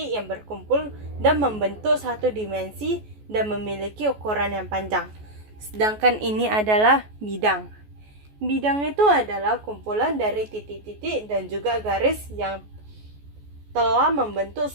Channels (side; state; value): left; late; 14 ms